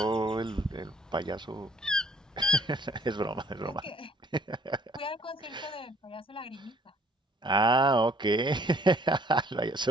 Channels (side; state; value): both; normal; correlation 0.60